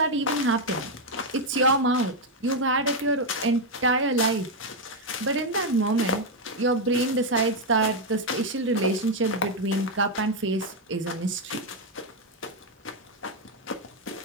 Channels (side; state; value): both; normal; correlation 0.02